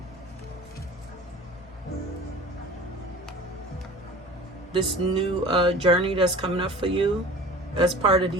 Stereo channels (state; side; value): normal; both; correlation 0.41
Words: journey that's coming up for you as part of